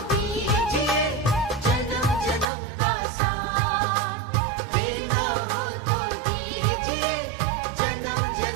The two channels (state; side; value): drops out; left; at 2.5 s